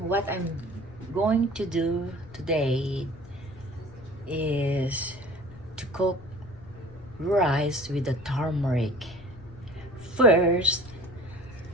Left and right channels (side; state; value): left; noise; rumble, 19 dB below the sound